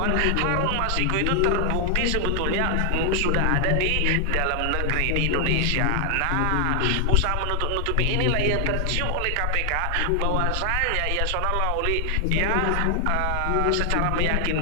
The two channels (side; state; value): both; different; correlation 0.00